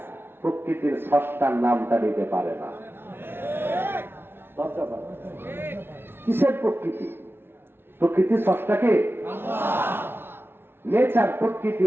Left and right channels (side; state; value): left; late; 0.11 ms